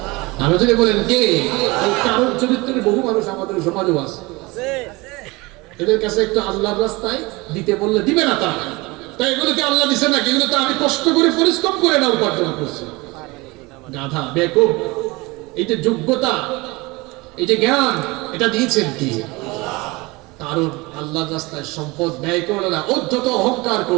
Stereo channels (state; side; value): quieter; left; 23.7 dB